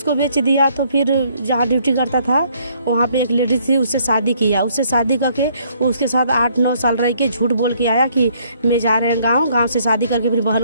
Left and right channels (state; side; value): inverted; both; correlation -0.66